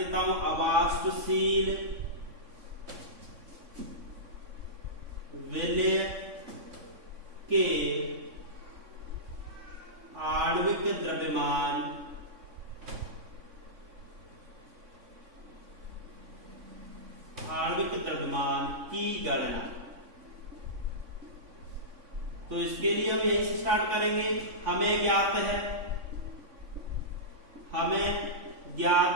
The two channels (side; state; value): left; late; 3.6 ms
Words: हूं, अवास्तुशील विलय के आणविक द्रव्यमान की गणना। तो इसके लिए हम यही से स्टार्ट करेंगे। हमें ज्ञात